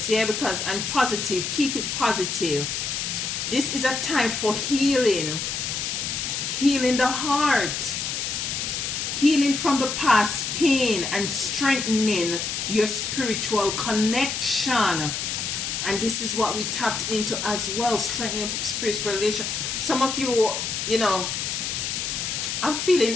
yeah, because, and positive. Keep it positive. This is a time for healing. Healing the heart. Healing from the past pain and strengthening your spiritual connection. And this is what we tapped into as well, strengthening spiritual relation. Some of you, you know, I'm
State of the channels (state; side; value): noise; left; hiss, 2 dB below the sound